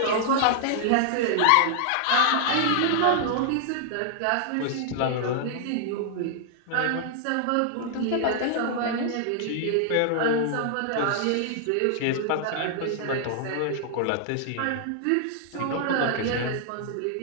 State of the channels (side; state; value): both; different; correlation -0.01